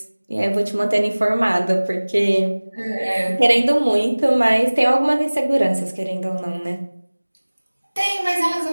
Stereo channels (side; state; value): both; inverted; correlation -1.00